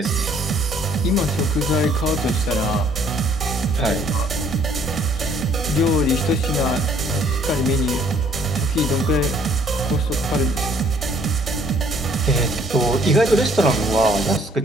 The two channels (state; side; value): normal; both; correlation 0.61